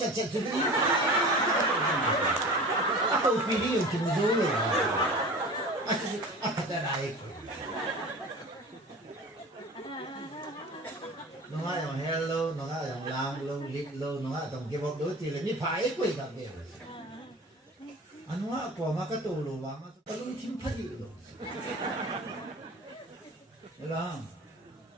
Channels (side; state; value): both; normal; correlation 0.38